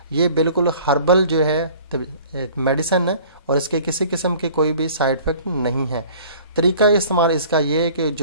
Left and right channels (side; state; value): both; inverted; correlation -0.49